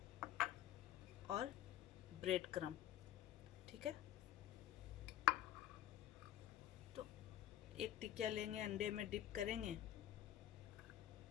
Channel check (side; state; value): right; quieter; 12.6 dB